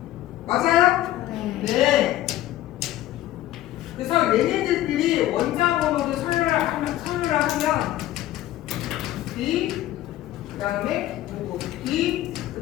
맞아요? 네. 네. 그래서 얘네들끼리 원자 번호를 서류를 하면 B, 그 다음에 누구? B, 그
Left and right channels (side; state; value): right; quieter; 14.4 dB